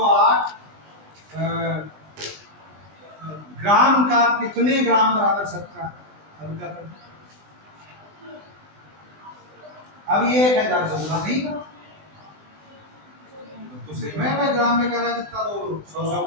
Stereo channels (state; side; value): late; left; 20 ms